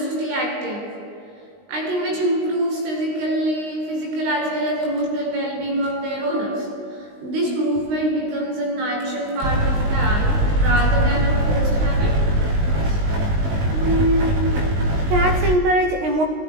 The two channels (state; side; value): late; left; 19 ms